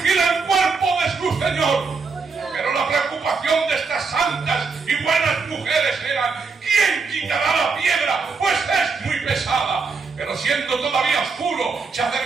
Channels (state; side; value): quieter; left; 4.7 dB